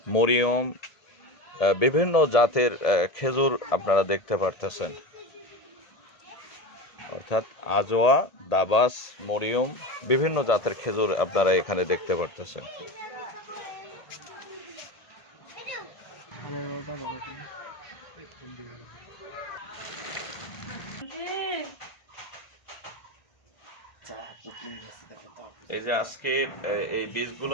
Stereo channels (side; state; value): right; late; 1.7 ms